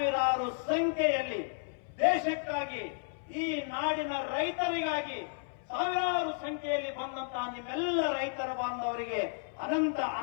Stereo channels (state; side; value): silent; right; 56 dB below the other